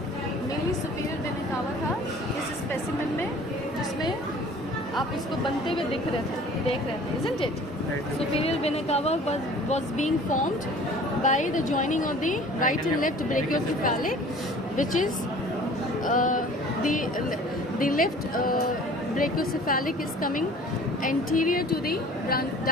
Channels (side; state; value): both; normal; correlation 0.47